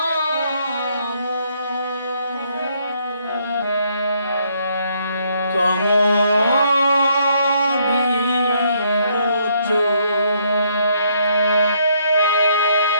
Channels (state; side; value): inverted; both; correlation -0.70